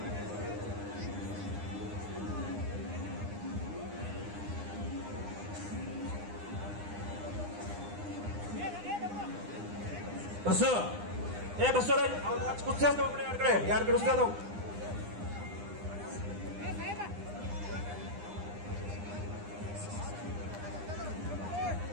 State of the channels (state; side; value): late; left; 9.9 ms